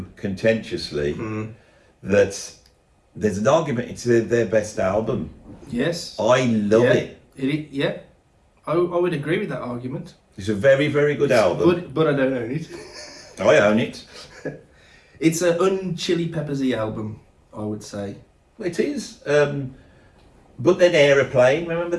contentiously that there's an argument it's their best album. Yes. I love it. Yeah. I would agree with that argument. It's a very, very good album. But I don't own it. I own it. It's an un-Chili Peppersy album, I would say. It is. But then Aeroplane, remember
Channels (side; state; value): both; identical; correlation 1.00